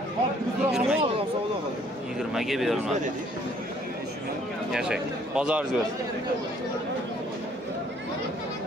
20 ga berilmadi. Yashang. Bozoringiz bo'lsin.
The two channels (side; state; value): both; normal; correlation 0.61